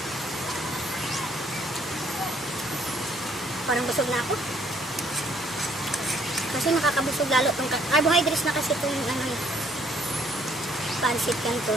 Parang busog na ako. Kasi nakakabusog lalo itong carbohydrates na kasi ito yung ano, pansit canton.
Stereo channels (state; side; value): normal; both; correlation 0.65